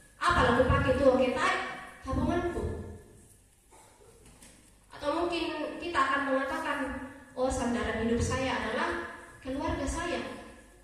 Apa aku pakai tuh ketai tabunganku? Atau mungkin kita akan mengatakan, oh, sandaran hidup saya adalah keluarga saya.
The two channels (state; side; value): identical; both; correlation 1.00